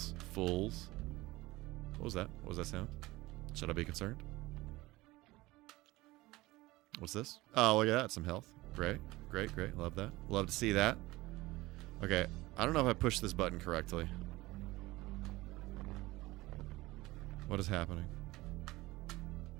Fools. What was that? What was that sound? Should I be concerned? What's this? Oh, look at that. Some health. Great. Great, great. Love that. Love to see that. Okay. I don't know if I pushed this button correctly. What is happening?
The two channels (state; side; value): quieter; left; 19.6 dB